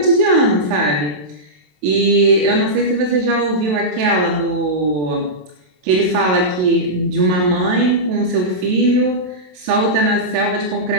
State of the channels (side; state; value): left; late; 27 ms